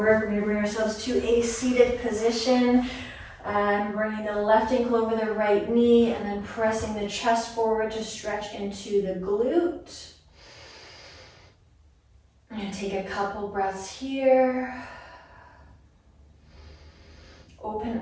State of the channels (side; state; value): both; identical; correlation 1.00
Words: We're going to bring ourselves to a seated position. Bringing the left ankle over the right knee and then pressing the chest forward to stretch into the glute. I'm gonna take a couple breaths here. Open